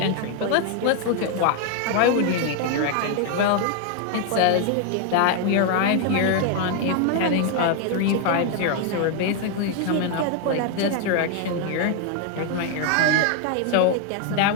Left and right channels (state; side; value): different; both; correlation 0.00